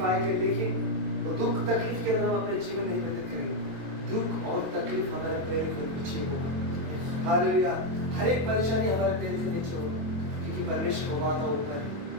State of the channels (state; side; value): late; left; 22 ms